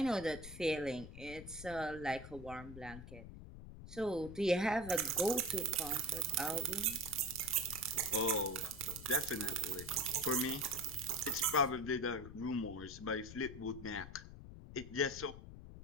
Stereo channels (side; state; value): left; noise; rumble, 13 dB below the sound